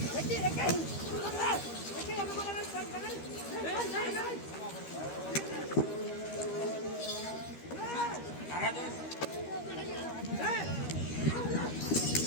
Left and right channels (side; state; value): right; late; 13 ms